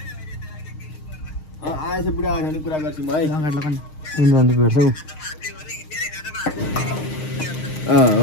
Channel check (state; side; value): late; right; 6.5 ms